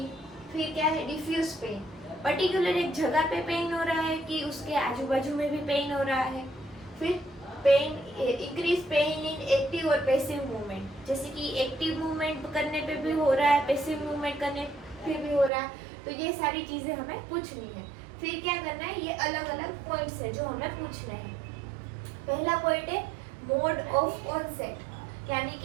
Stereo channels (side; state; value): left; drops out; at 15.5 s